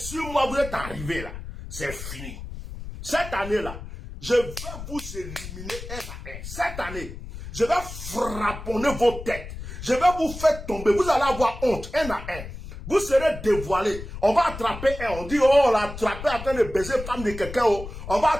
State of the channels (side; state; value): left; noise; rumble, 11 dB below the sound